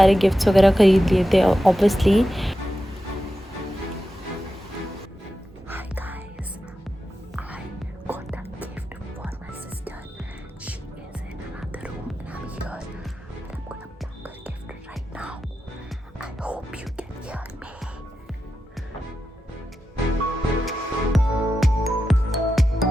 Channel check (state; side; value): normal; both; correlation 0.90